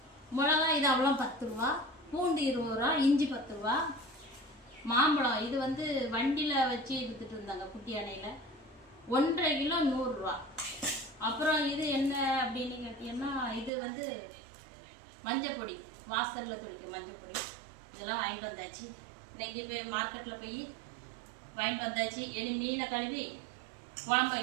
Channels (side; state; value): left; drops out; at 13.7 s